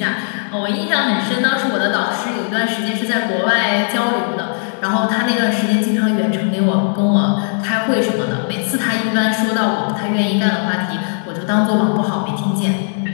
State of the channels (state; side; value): silent; right; digital silence